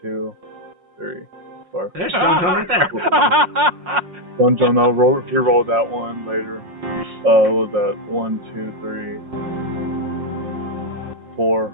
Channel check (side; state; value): left; late; 5.6 ms